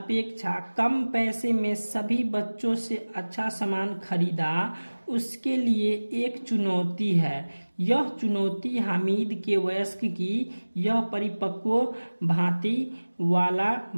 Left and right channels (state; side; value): inverted; both; correlation -1.00